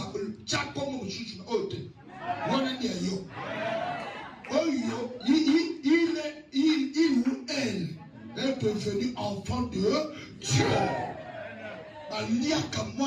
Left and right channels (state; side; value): identical; both; correlation 1.00